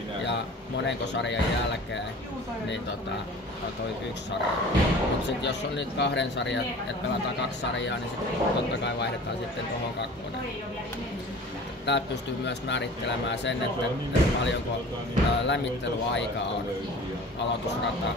ja monenko sarjan jälkeen, niin toi 1 sarja. Mut sit jos on nyt 2 sarjaa, että pelataan 2 sarjaa, niin sit totta kai vaihdetaan sitten tuohon 2. Täältä pystyy myös määrittelemään sen, että paljonko lämmittelyaikaa on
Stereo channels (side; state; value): both; normal; correlation 0.42